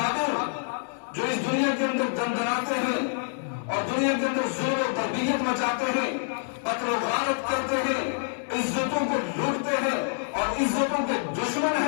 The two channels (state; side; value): silent; right; digital silence